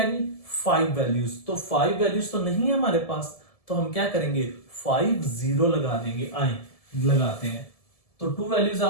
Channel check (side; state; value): right; late; 1.7 ms